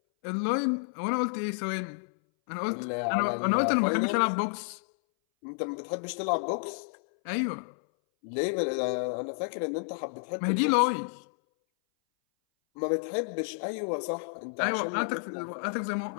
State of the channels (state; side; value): silent; right; 58 dB below the other